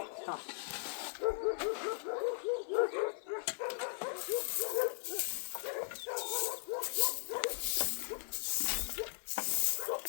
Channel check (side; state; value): right; silent; digital silence